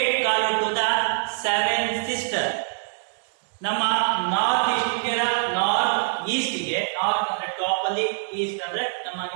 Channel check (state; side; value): silent; left; digital silence